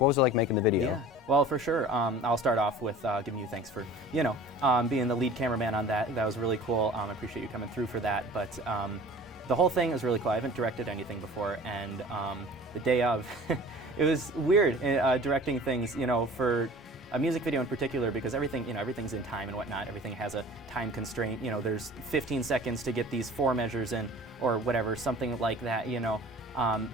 what was it like making the video? Yeah, well, for sure. I'll start off with giving you thanks for, you know, being the lead cameraman on that. That was really cool. I appreciate you coming through for that. But the whole thing was really cool. I haven't directed anything before, and the day of, it was weird directing things, you know, for a music video in particular, because everything, you know, everything's in time and whatnot. Everything has a time constraint. You know, there's 15 seconds to get these 4 measures in, or whatever, something like that. You know,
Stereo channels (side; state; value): both; normal; correlation 0.44